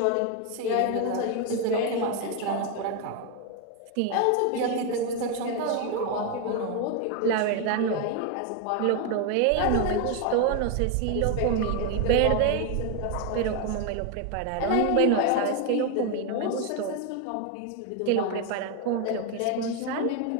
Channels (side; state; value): both; different; correlation 0.01